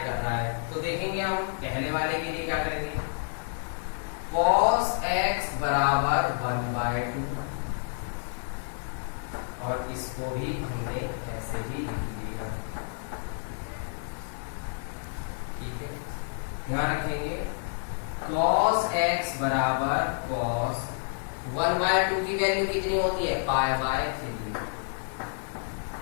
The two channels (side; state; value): right; silent; digital silence